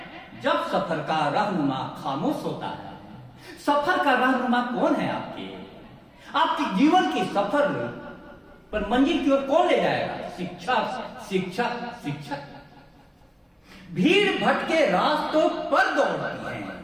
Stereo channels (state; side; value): identical; both; correlation 1.00